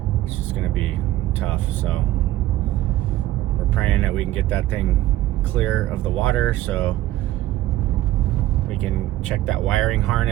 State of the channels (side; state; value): left; quieter; 15.0 dB